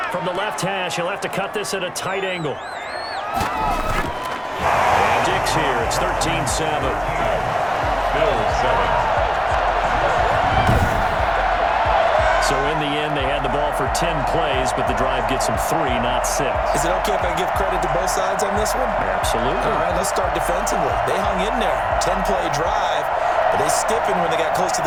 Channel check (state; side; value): identical; both; correlation 1.00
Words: From the left hash, he'll have to cut this at a tight angle. Dix here. It's 13-7. Bills 7. So in the end, they had the ball for 10 plays, but the drive gets them 3, not 6. Is it okay if I give credit to both sides on this one? Absolutely. All right, let's start defensively. They hung in there. 10-play drive, but they stiffened when they got close to